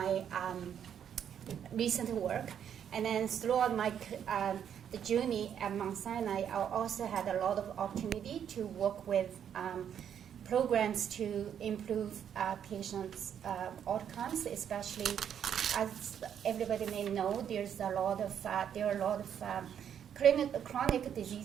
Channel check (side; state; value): left; quieter; 8.9 dB